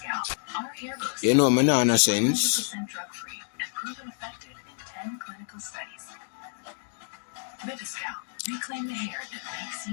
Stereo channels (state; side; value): silent; right; digital silence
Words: Our hair looks You know, me nah no sense. 100% drug-free and proven effective in 10 clinical studies. Baby Scalp. Reclaim the hair that makes